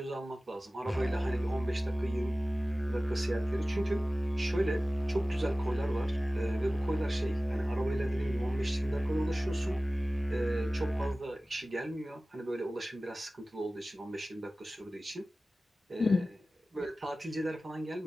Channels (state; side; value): normal; both; correlation 0.97